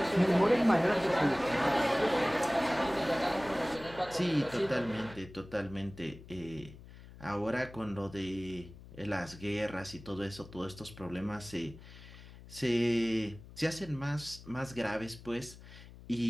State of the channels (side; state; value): left; noise; hum, 18 dB below the sound